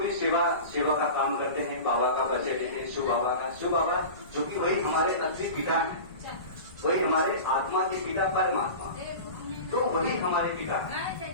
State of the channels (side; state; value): both; inverted; correlation -0.32